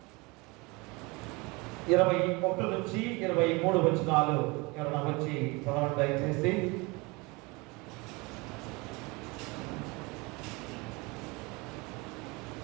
21 నుంచి 23 వచనాలు ఎవరైనా వచ్చి చదవండి దయచేసి.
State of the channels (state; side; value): quieter; left; 26.0 dB